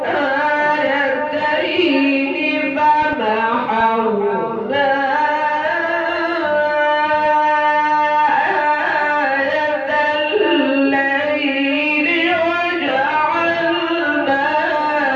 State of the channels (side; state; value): both; identical; correlation 1.00